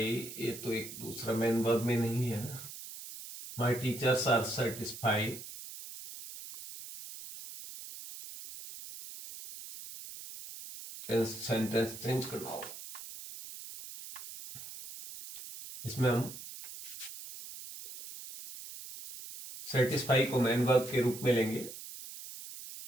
ये तो एक दूसरा मेन वर्ब में नहीं है ना। my teachers are satisfied sentence change करना होगा। इसमें हम सेटिस्फाई को मेन वर्ब के रूप में लेंगे।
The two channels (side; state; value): right; noise; hiss, 12 dB below the sound